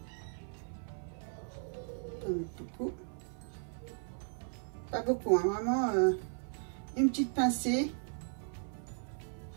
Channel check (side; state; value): left; silent; 53 dB below the other